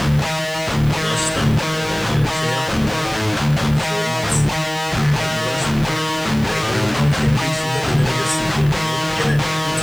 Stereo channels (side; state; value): right; noise; hiss, 20 dB below the sound